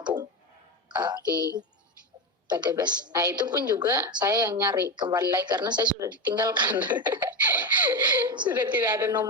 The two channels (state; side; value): normal; both; correlation 0.15